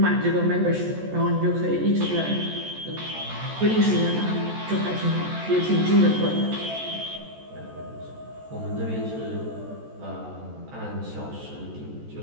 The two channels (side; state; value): left; late; 14 ms